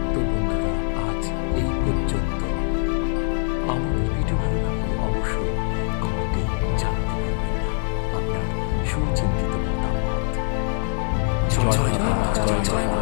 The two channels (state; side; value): silent; right; 57 dB below the other